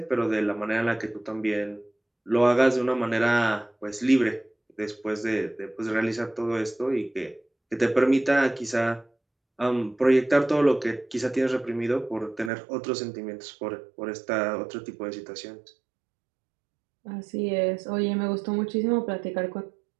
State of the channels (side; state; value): left; drops out; at 12.5 s